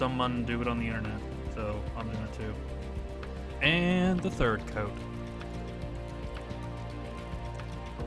do it on the internet, so I'm doing it too. And the third coat.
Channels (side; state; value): both; identical; correlation 1.00